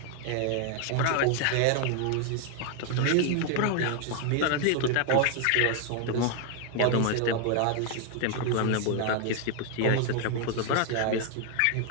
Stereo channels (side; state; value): both; different; correlation 0.00